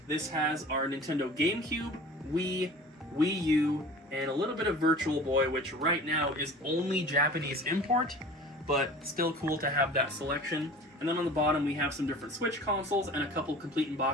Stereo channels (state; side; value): normal; both; correlation 0.41